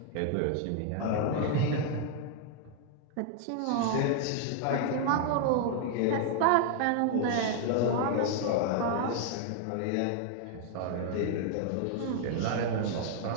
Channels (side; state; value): both; different; correlation 0.00